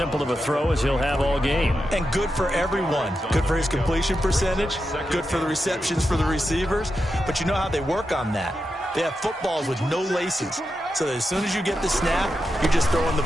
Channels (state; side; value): normal; both; correlation 0.88